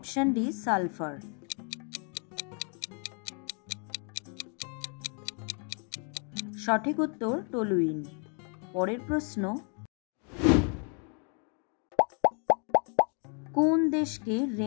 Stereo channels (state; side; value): quieter; right; 39.3 dB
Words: D sulphur. সঠিক উত্তর টলুইন। পরের প্রশ্ন, কোন দেশকে